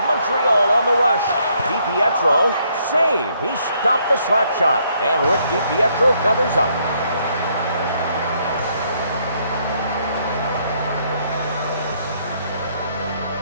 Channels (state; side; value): inverted; both; correlation -0.70